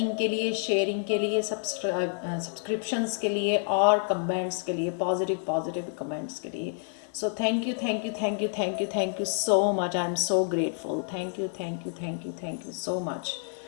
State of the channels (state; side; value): silent; right; 59 dB below the other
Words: के लिए, sharing के लिए, सब्सक्रिप्शंस के लिए और कमेंट्स के लिए, पॉजिटिव कमेंट्स के लिए. So thank you so much. I am so grateful. Thank you so much.